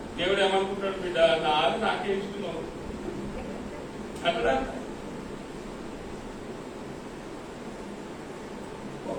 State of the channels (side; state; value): both; identical; correlation 1.00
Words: దేవుడు ఏమనుకుంటాడు? బిడ్డ నాకే ఇస్తున్నావు అక్కడ.